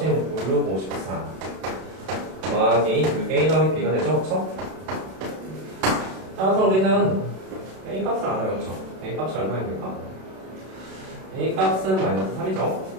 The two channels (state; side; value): late; left; 32 ms